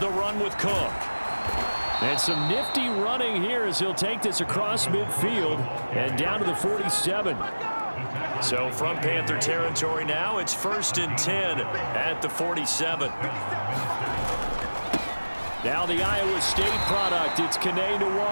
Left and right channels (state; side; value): inverted; both; correlation -1.00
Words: run with Cook. And some nifty running here as he'll take this across midfield and down to the 47. So from Panther territory now, it's 1st and 10 at the 47. Now the Iowa State product, it's Kene